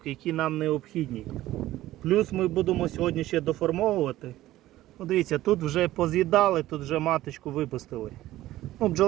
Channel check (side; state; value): left; quieter; 15.4 dB